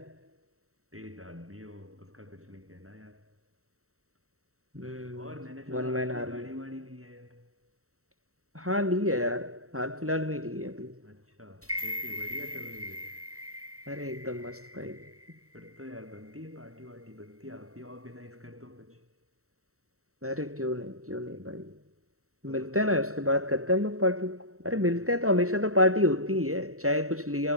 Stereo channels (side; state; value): left; late; 0.64 ms